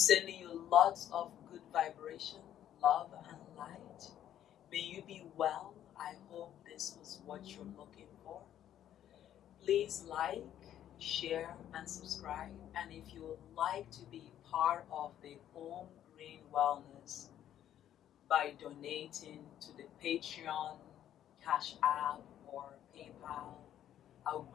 you lots of good vibration, love and light. May you be well. I hope this was what you're looking for. Please like, share, and subscribe. And if you would like to be part of the Home Green Wellness by donating to the Patreon, Cash App, or PayPal, I would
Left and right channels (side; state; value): right; quieter; 11.1 dB